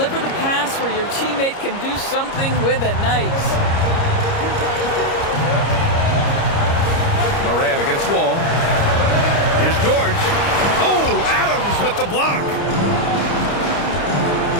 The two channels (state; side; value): late; right; 30 ms